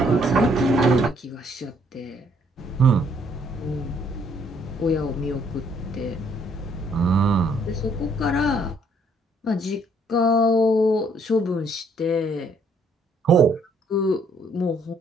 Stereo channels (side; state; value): both; normal; correlation 0.66